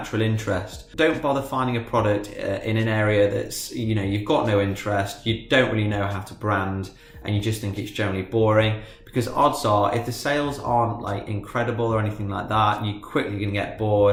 interest. Don't bother finding a product in an area that's, you know, you've got no interest, you don't really know how to brand, and you just think it's generally boring, because odds are if the sales aren't like incredible or anything like that, you're quickly going to get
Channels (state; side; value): identical; both; correlation 1.00